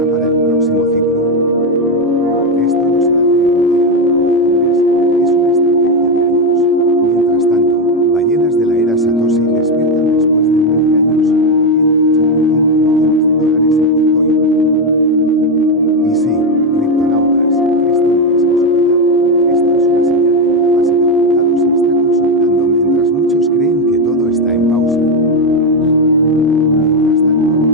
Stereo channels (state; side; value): normal; both; correlation 0.08